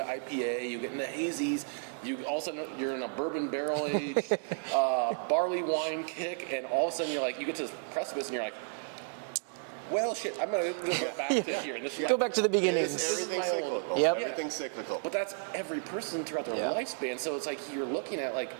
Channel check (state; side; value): silent; left; 56 dB below the other